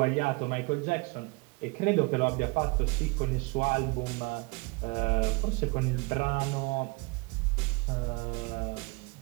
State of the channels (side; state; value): left; quieter; 28.0 dB